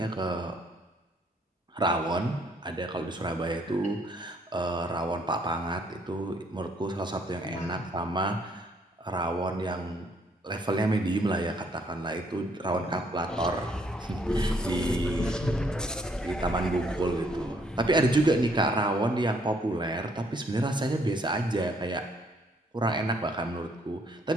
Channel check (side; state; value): both; normal; correlation 0.67